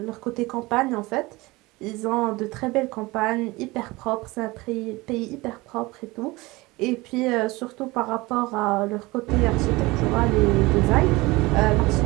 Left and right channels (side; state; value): left; quieter; 22.0 dB